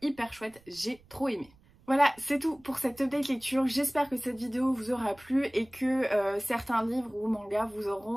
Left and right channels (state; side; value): noise; right; rumble, 28 dB below the sound